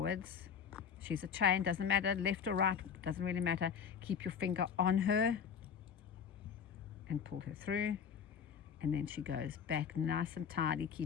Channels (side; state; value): right; quieter; 7.3 dB